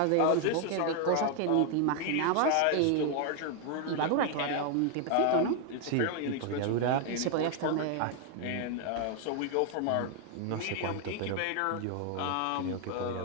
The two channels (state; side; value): different; both; correlation 0.00